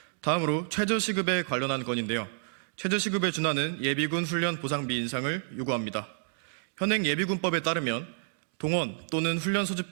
다음으로 최저시급에 관련한 건인데요. 최저시급에 준하는 예비군 훈련 보상비 인상을 요구합니다. 현행 예비군법에 따르면 동원 또는 훈련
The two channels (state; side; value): silent; left; digital silence